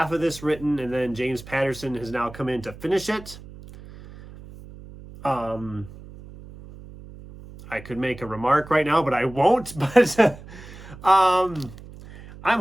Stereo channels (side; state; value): right; noise; hum, 17 dB below the sound